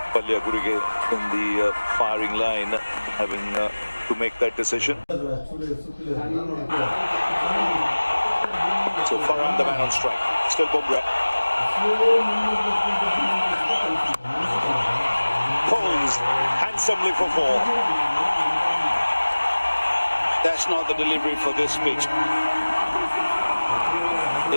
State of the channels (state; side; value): inverted; both; correlation -1.00